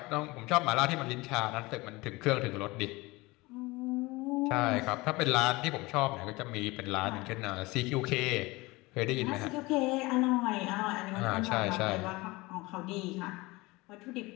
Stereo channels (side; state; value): right; quieter; 22.4 dB